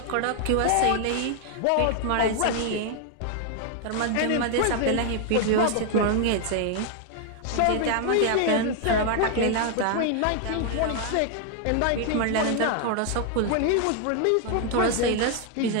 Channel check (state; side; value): different; both; correlation 0.00